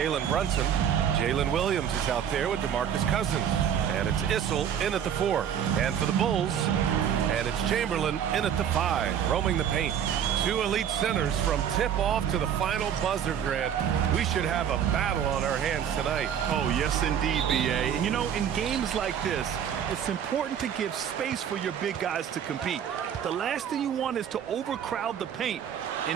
Brunson. Jalen Williams is out there with DeMarcus Cousins. And it's Issel in at the 4. And for the Bulls, and it's Chamberlain in at the 5, roaming the paint. Two elite centers from tip-off to the final buzzer, Grant. We should have a battle on our hands tonight. Oh, yes, indeed, B.A. And, you know, in games like this, it's important to give space for your big guys to compete. The last thing you want is to overcrowd the paint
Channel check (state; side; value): quieter; left; 8.8 dB